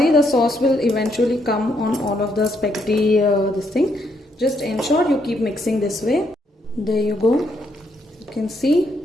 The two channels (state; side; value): normal; both; correlation 0.75